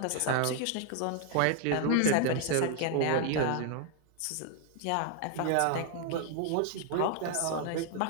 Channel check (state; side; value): different; both; correlation 0.00